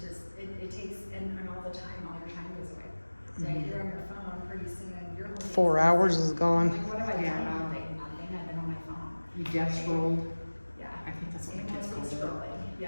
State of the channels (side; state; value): both; inverted; correlation -1.00